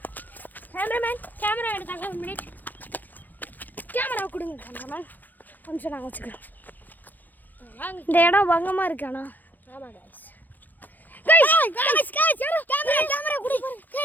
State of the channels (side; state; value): right; late; 0.085 ms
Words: கேமராமேன் கேமரா எடுத்தாங்க. 1 மினிட் கேமரா கொடுங்க கேமராமேன். கொஞ்சம் நாங்கள் வச்சுக்கிறோம். இந்த இடம் பங்கமாக இருக்கு. ஆனால் ஆமாம் கைஸ் கேமரா குடி